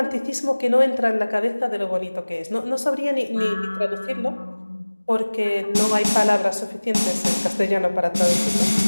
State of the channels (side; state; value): both; inverted; correlation -1.00